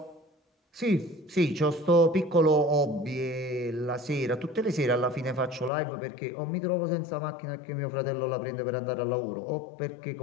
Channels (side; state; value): right; drops out; at 5.7 s